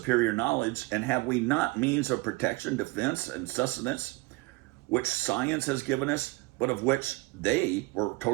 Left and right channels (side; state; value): left; quieter; 23.5 dB